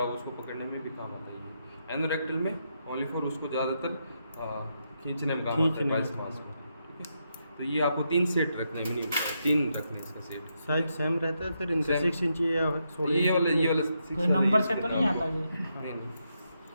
हो उसको पकड़ने में भी काम आता है ये। एनोरेक्टल में ओनली फॉर उसको ज़्यादातर खींचने में काम आता है पाइल्स मास में। ठीक है, तो ये आपको 3 सेट रखना है, मिनी 3 रखने हैं इसका सेट। साइज सेम रहता है सर, इनका 6 इंच या 16 ये वाला कोई नंबर से तो नहीं आता ये? नहीं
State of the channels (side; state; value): both; inverted; correlation -0.82